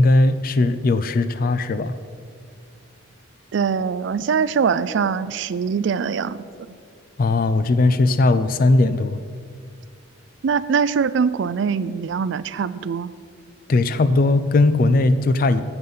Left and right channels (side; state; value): both; normal; correlation 0.57